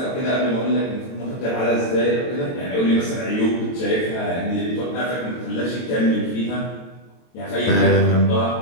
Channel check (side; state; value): right; late; 23 ms